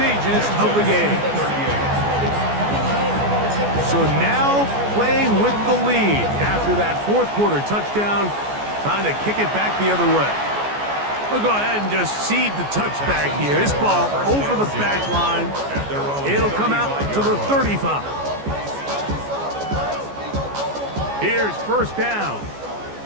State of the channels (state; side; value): late; left; 14 ms